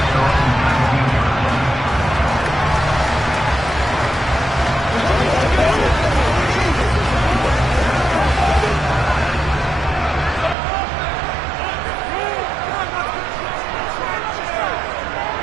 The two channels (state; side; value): drops out; left; at 10.6 s